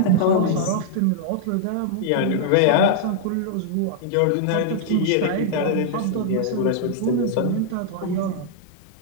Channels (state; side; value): different; both; correlation -0.01